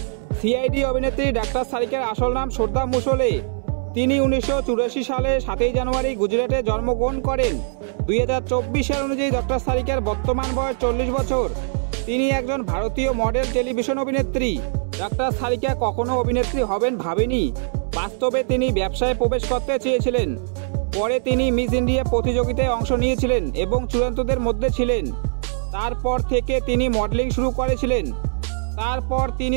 সিআইডি অভিনেত্রী ডাক্তার সারিকার আসল নাম শ্রদ্ধা মুসলে। তিনি 1984 সালে 7 জানুয়ারি গুজরাটে জন্মগ্রহণ করেন। 2024 সাল অনুযায়ী ডক্টর সারিকার বর্তমান বয়স 40 বছর। তিনি একজন ভারতীয় মডেল টেলিভিশন অভিনেত্রী। ডাক্তার সারিকা কখনো অভিনেত্রী হবেন ভাবেনি। বাস্তবে তিনি ব্যবসায় প্রবেশ করতে চেয়েছিলেন। পরে তিনি মিস ইন্ডিয়া প্রতিযোগিতায় অংশ নিয়েছিলেন এবং চূড়ান্তদের মধ্যে ছিলেন। তারপর থেকে তিনি মডেলিং শুরু করেছিলেন। তারপর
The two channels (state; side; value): silent; left; digital silence